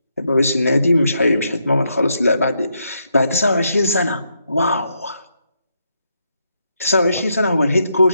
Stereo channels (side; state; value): both; inverted; correlation -0.79